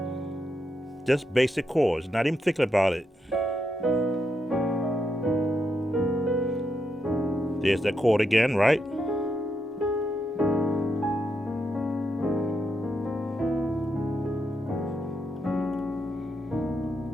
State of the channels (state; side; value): normal; both; correlation 0.82